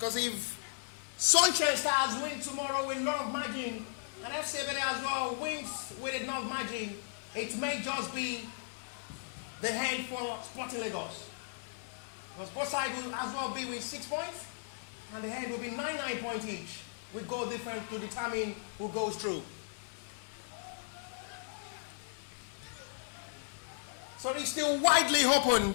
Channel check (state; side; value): silent; right; digital silence